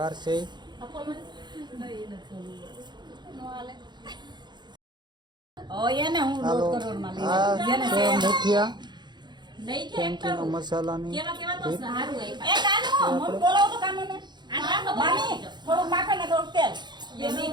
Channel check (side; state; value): left; late; 0.21 ms